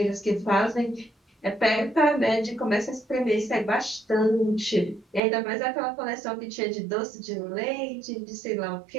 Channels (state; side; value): drops out; left; at 5.2 s